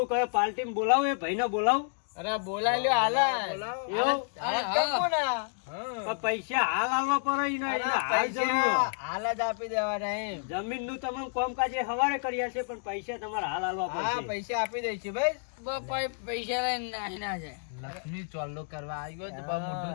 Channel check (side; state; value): right; silent; digital silence